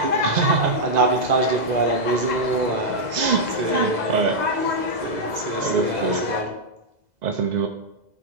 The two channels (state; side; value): late; left; 2.0 ms